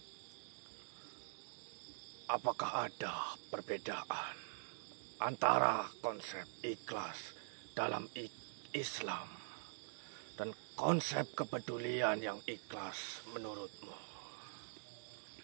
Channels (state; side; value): silent; left; digital silence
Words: Apakah ada perbedaan antara konsep ikhlas dalam Islam dan konsep kepedulian yang ikhlas menurutmu?